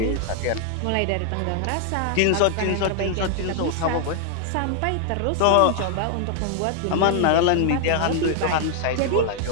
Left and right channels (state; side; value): different; both; correlation 0.00